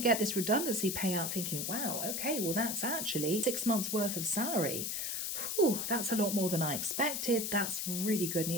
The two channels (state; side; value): noise; left; hiss, 2 dB below the sound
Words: this redundancy payout thinking, wow, okay, well, that's actually 6 months worth of salary. Whew, that's a lot more than I expected. That's really good